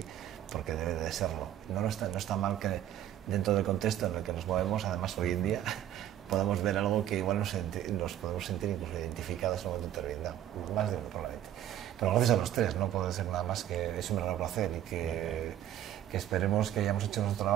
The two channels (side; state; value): left; quieter; 11.4 dB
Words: porque debe de serlo. No está mal que dentro del contexto en el que nos movemos, además hoy en día, podamos ver algo que igual nos podemos sentir incluso identificados en un momento determinado, más de uno probablemente. Pero gracias a los tres, no puedo decir nada más que es un verdadero placer y que esperemos que hayamos hecho nuestro